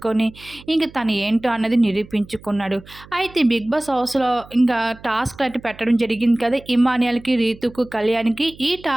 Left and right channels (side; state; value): right; noise; hum, 22 dB below the sound